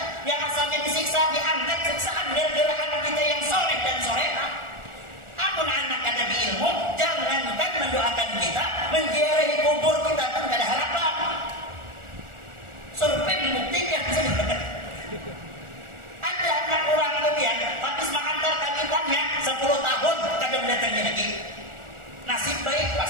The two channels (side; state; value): left; late; 1.4 ms